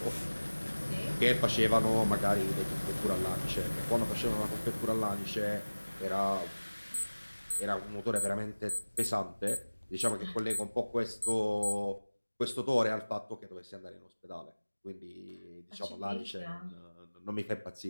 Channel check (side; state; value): both; inverted; correlation -1.00